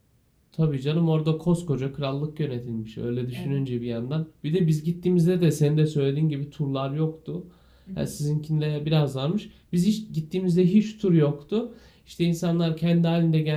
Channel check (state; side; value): identical; both; correlation 1.00